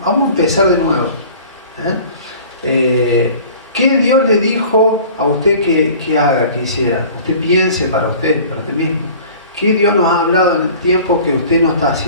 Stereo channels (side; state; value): both; inverted; correlation -0.45